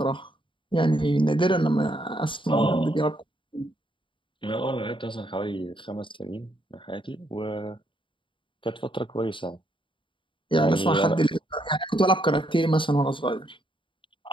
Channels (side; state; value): right; late; 0.24 ms